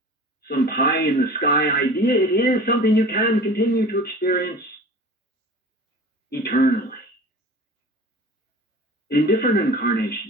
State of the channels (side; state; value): both; normal; correlation 0.39